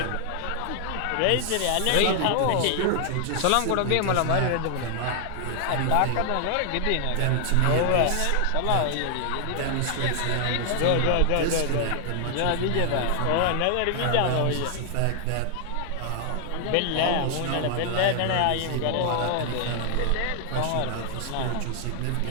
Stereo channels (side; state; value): both; different; correlation 0.00